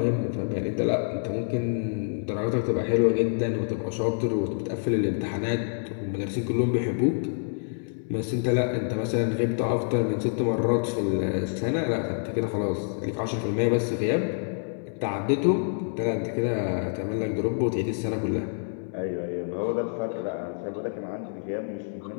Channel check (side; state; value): right; silent; 60 dB below the other